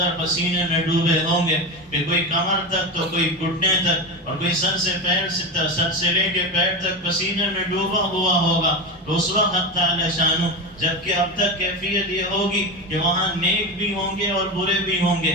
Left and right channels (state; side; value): normal; both; correlation 0.20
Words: پسینے میں ڈوبے ہوں گے، کہ کوئی کمر تک تو کوئی گھٹنے تک، اور کوئی سر سے لے کے پیر تک پسینے میں ڈوبا ہوا ہوگا۔ تو اس وقت تعالی شانو، جبکہ اب تک کیفیت یہ ہوگی کہ وہاں نیک بھی ہوں گے اور برے بھی ہوں گے،